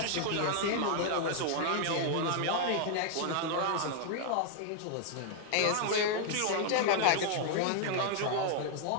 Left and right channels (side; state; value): both; different; correlation 0.00